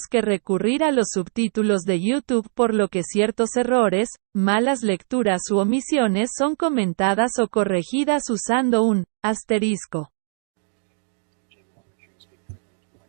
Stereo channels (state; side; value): silent; left; digital silence